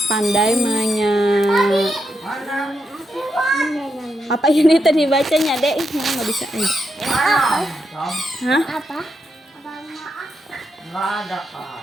pandai apa ini tadi bacanya dek? Nggak bisa. Hah? apa? Nggak ada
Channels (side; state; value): both; normal; correlation 0.83